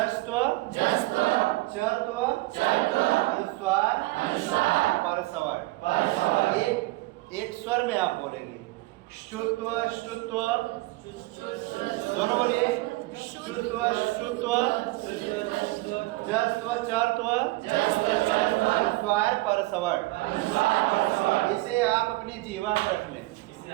चर्त्व, अनुस्वार, परसवर्ण। एक स्वर में आप बोलेंगे। शुत्व, श्रुत्व, दोनों बोलिए। शुत्व, श्रुत्व, जस्त्व, चर्त्व, अनुस्वार, परसवर्ण। इसे आप अपनी जीवा में रख लें।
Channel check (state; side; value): quieter; left; 20.6 dB